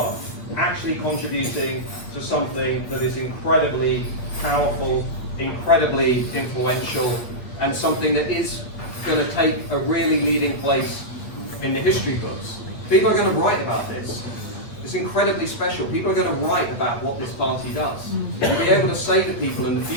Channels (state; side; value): late; right; 8.8 ms